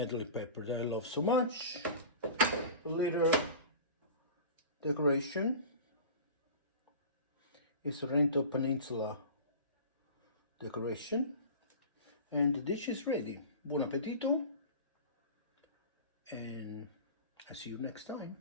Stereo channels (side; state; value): both; inverted; correlation -0.36